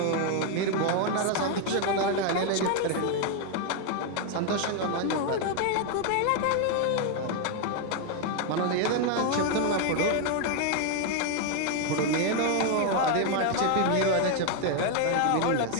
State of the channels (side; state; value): both; different; correlation 0.00